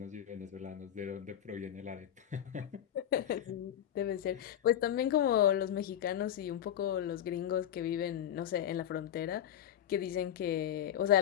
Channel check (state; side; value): quieter; right; 10.6 dB